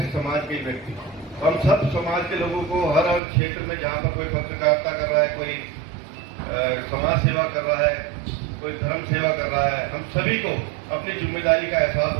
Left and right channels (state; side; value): drops out; left; at 3.2 s